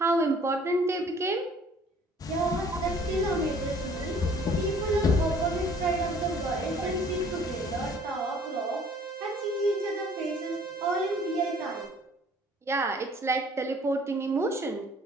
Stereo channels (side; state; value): both; normal; correlation 0.55